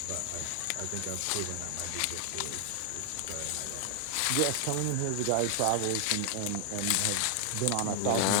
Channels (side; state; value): both; different; correlation 0.00